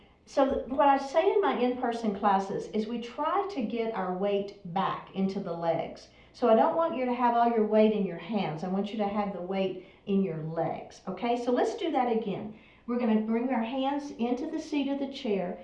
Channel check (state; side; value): identical; both; correlation 1.00